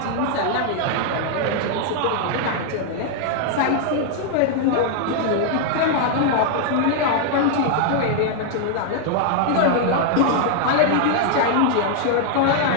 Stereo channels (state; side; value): different; both; correlation 0.00